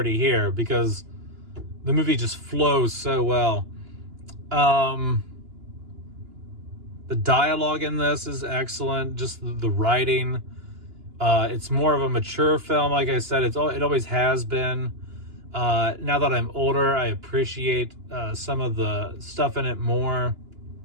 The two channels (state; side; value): late; left; 2.9 ms